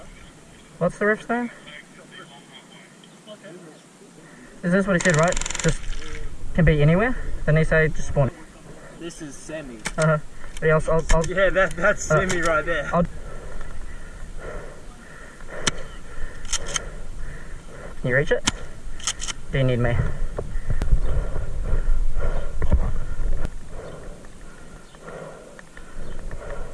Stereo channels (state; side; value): identical; both; correlation 1.00